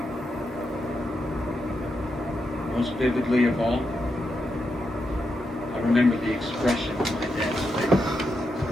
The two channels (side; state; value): both; normal; correlation 0.84